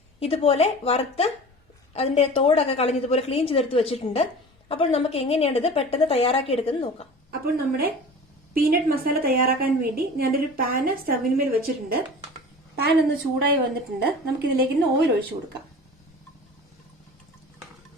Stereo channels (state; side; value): normal; both; correlation 0.38